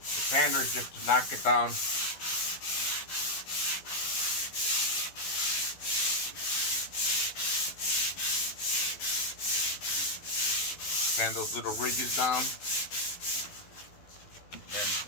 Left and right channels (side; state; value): right; late; 12 ms